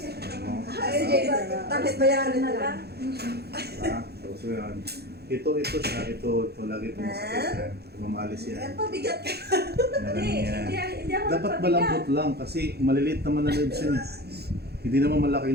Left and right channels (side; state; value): left; late; 0.47 ms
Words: Tapos bayaran na lang. So yan. Ito siya. Ito lagi itong masakit yan. Mamalis yan. Pabigat ka. Hindi ako Dapat malambot lang kasi maliliit naman na nerves yan. Hindi naman malaki